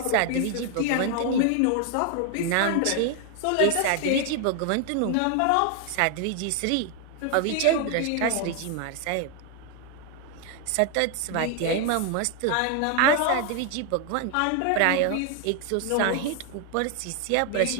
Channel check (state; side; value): different; both; correlation 0.00